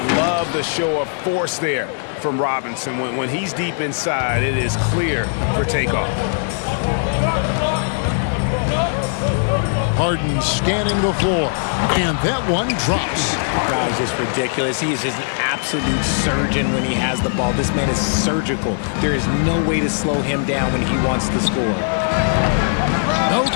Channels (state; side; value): silent; right; 60 dB below the other